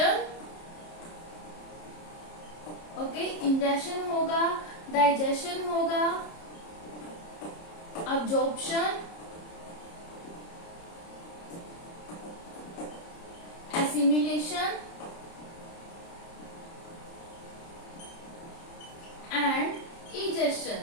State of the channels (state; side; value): late; right; 30 ms